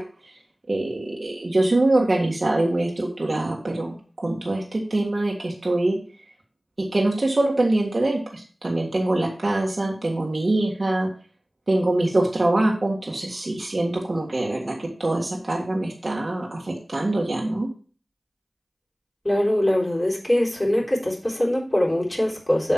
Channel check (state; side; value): normal; both; correlation 0.98